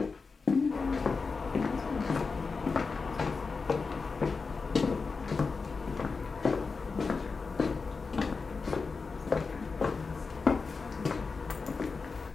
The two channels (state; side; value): quieter; right; 4.6 dB